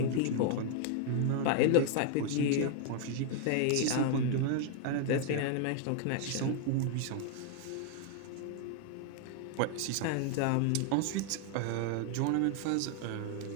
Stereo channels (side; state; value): both; different; correlation 0.00